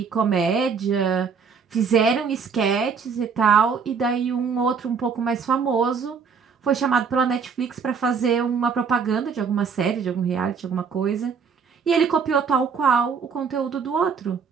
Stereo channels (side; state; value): left; quieter; 5.9 dB